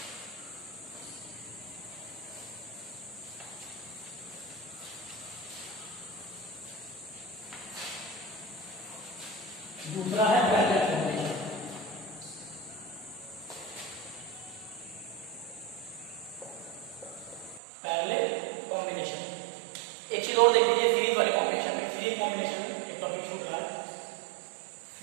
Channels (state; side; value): drops out; left; at 17.6 s